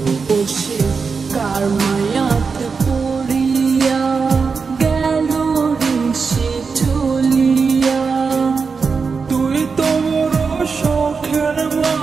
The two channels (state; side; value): quieter; left; 5.1 dB